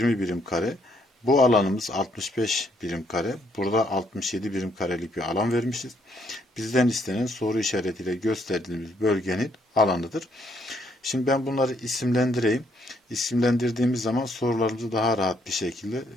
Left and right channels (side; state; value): both; normal; correlation 0.70